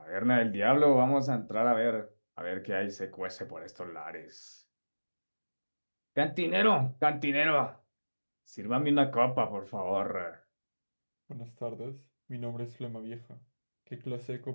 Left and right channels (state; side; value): inverted; both; correlation -1.00